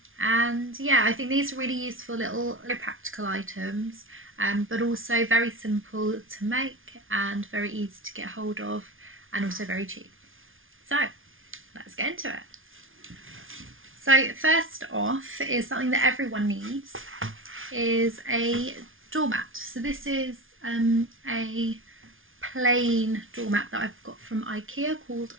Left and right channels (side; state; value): left; late; 0.58 ms